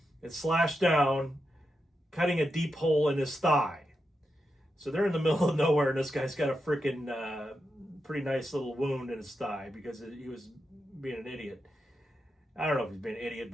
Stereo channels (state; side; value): normal; both; correlation 0.87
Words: it slashed down, cutting a deep hole in his thigh. So they're in the middle of nowhere, and this guy's got a freaking pretty nice little wound in his thigh because he was being an idiot. I don't know if he's being an idiot,